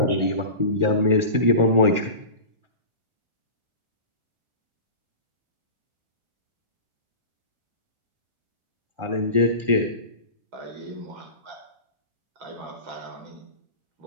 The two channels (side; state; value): left; late; 1.4 ms